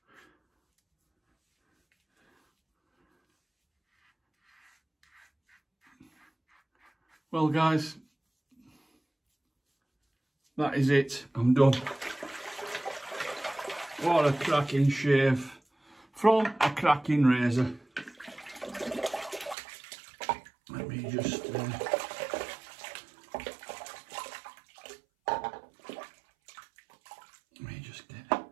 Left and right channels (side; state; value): left; drops out; at 19.6 s